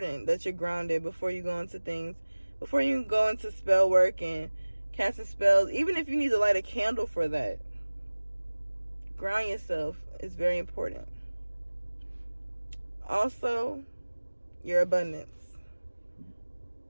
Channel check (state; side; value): inverted; both; correlation -1.00